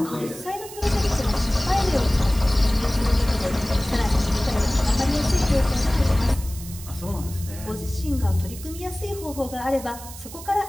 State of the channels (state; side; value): noise; right; hiss, 15 dB below the sound